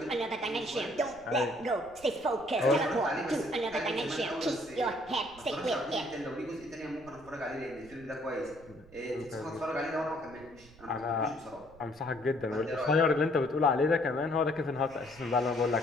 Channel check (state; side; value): noise; right; rumble, 23 dB below the sound